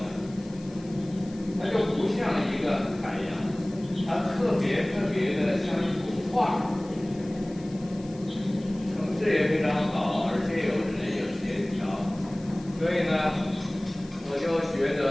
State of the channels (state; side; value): noise; left; hiss, 23 dB below the sound